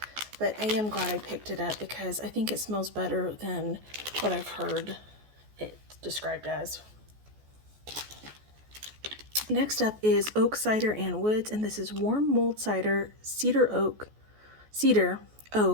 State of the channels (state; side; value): late; left; 14 ms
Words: but I am glad I picked it up because I think it smells better than what I've heard it described as. Next up is oak cider and woods, and this is warm mulled cider, cedar,